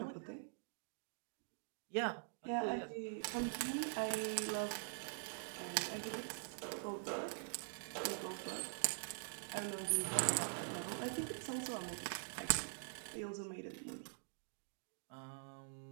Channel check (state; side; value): silent; left; digital silence